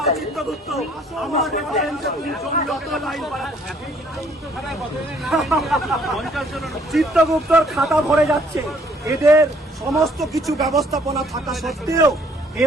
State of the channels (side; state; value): both; normal; correlation 0.62